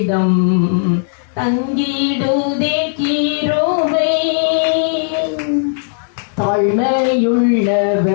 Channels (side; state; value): right; silent; digital silence